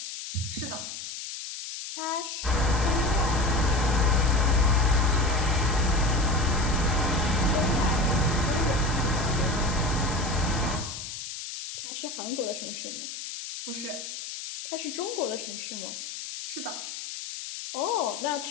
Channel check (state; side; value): noise; left; hiss, 8 dB below the sound